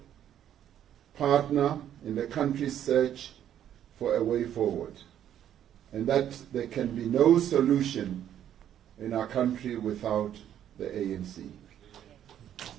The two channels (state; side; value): quieter; left; 10.5 dB